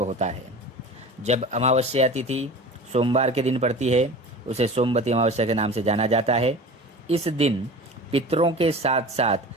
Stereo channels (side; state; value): both; normal; correlation 0.36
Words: होता है। जब अमावस्या तिथि सोमवार के दिन पड़ती है, उसे सोमवती अमावस्या के नाम से जाना जाता है। इस दिन पितरों के साथ साथ